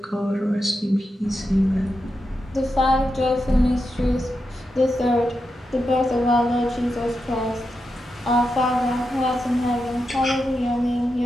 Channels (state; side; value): normal; both; correlation 0.87